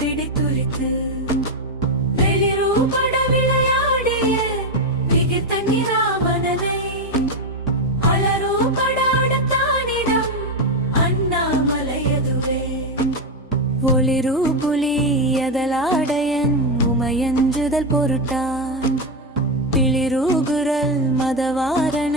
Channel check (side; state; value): both; normal; correlation 0.08